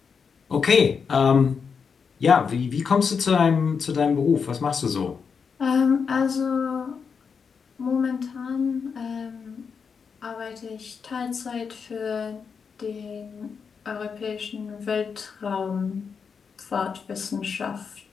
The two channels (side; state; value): right; quieter; 6.0 dB